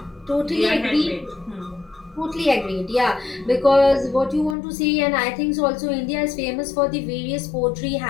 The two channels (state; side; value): drops out; right; at 4.5 s